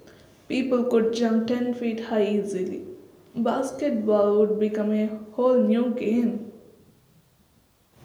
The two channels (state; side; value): identical; both; correlation 1.00